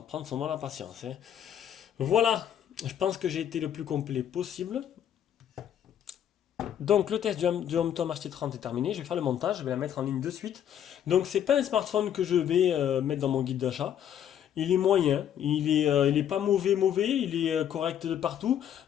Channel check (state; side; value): quieter; right; 9.9 dB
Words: prendre son mal à patience, hein. Voilà, je pense que j'ai été le plus complet possible. Donc le test du HomeTom HT30 est terminé, je vais faire le montage, je vais la mettre en ligne de suite. Donc c'est pas un smartphone que je vais mettre dans mon guide d'achat. Il est moyen, il est pas mauvais, il est correct de partout.